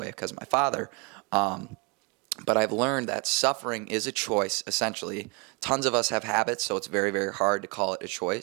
because of my father. But I've learned that suffering is a choice, essentially. Tons of us have habits, so it's very hard to call it a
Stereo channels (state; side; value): quieter; left; 31.6 dB